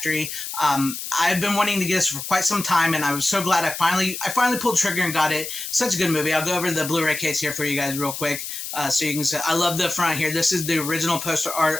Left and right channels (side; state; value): left; noise; hiss, 7 dB below the sound